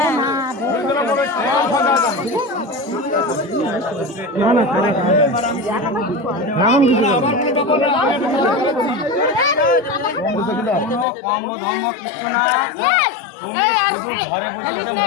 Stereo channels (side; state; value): right; drops out; at 11.1 s